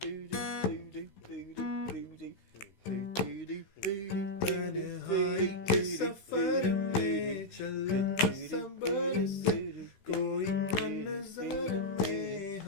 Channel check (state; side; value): late; right; 16 ms